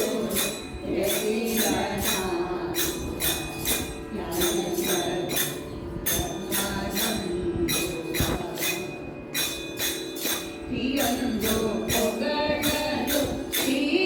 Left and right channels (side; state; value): both; identical; correlation 1.00